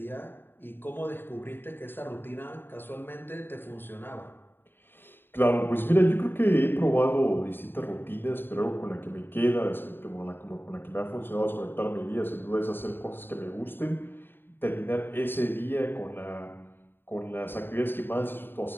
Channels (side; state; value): right; late; 0.099 ms